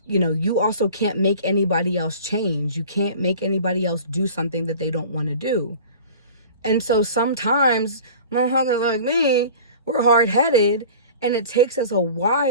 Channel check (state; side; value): inverted; both; correlation -0.41